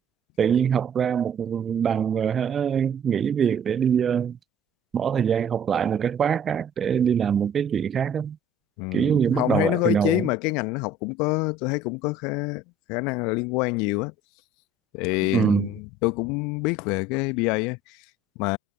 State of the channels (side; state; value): both; normal; correlation 0.51